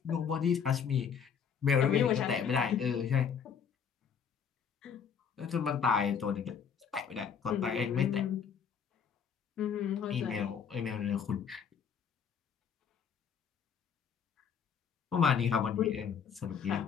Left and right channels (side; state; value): right; quieter; 7.1 dB